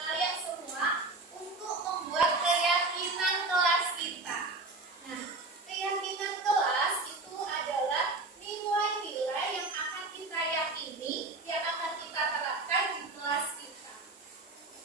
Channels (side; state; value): left; quieter; 3.3 dB